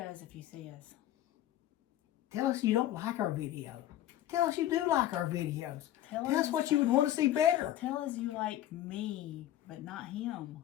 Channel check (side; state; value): right; quieter; 13.1 dB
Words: if you see us. Tell us you don't like our video. Tell us you do like our videos. Tell us what you would want to see better. Tell us you like me, but not him.